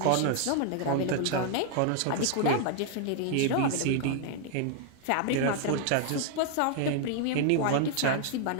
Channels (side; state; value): both; different; correlation 0.00